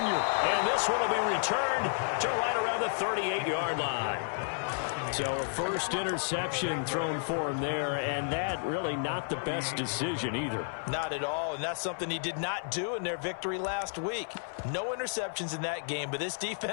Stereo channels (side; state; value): right; silent; 57 dB below the other